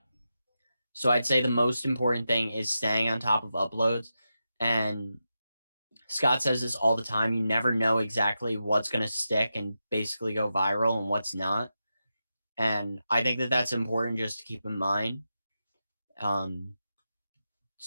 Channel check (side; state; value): both; inverted; correlation -0.89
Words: So I'd say the most important thing is staying on top of uploads. And Scott says this all the time. You never know exactly what's going to stick and basically go viral and what's not. And I think that that's important just to keep in mind.